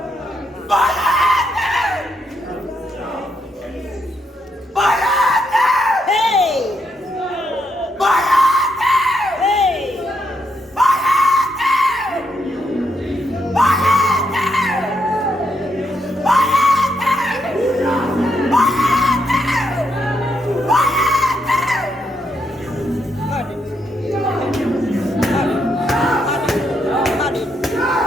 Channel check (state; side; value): normal; both; correlation 0.78